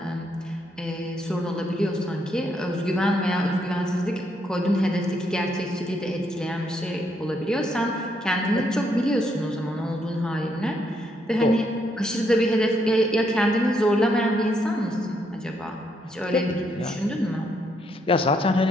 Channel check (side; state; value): both; normal; correlation 0.74